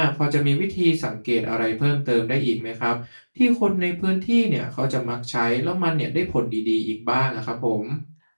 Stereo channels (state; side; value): inverted; both; correlation -1.00